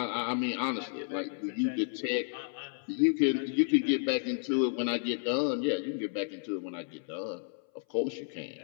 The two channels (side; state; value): right; silent; 57 dB below the other